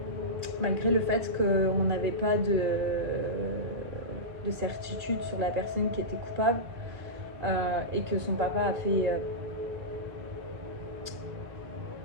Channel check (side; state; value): left; late; 2.0 ms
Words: malgré le fait qu'on n'avait pas de certitude sur la personne qui était coupable, et que son papa a fait